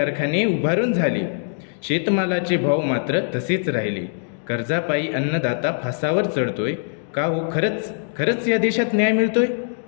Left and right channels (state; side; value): silent; right; digital silence